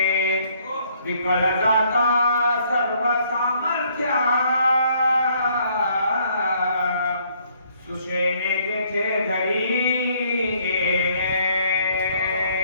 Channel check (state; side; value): inverted; both; correlation -0.65